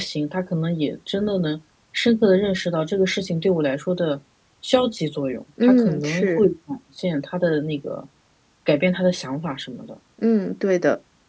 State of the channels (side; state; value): both; identical; correlation 1.00